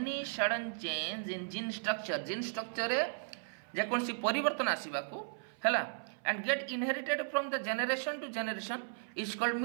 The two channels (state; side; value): silent; left; 54 dB below the other